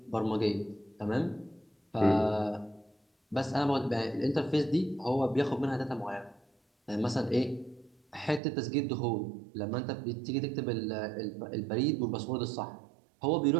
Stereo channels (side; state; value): left; drops out; at 8.4 s